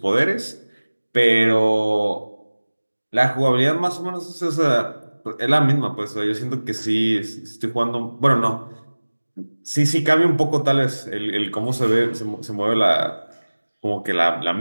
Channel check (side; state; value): both; inverted; correlation -1.00